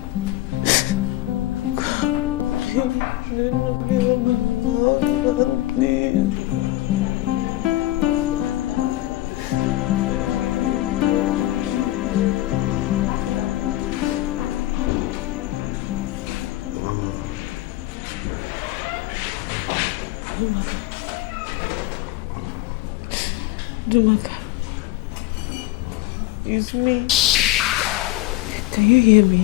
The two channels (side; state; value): right; quieter; 16.7 dB